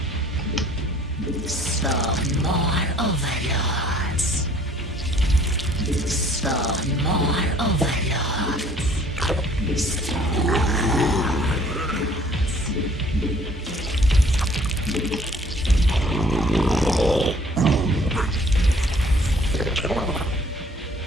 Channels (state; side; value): normal; both; correlation 0.57